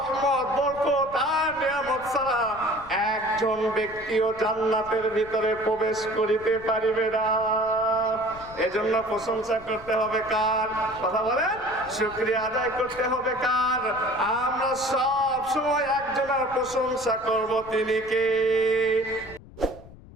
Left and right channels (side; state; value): left; noise; rumble, 19 dB below the sound